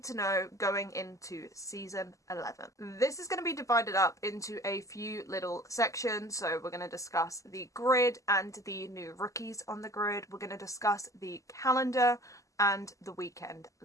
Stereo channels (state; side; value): late; right; 0.16 ms